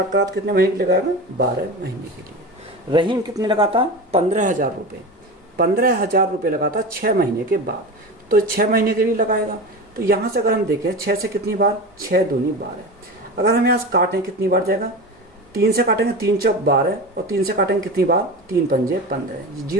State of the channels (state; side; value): normal; both; correlation 0.27